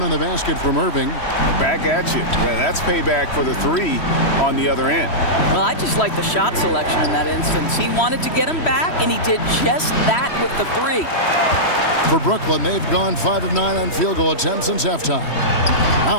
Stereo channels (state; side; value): late; right; 3.1 ms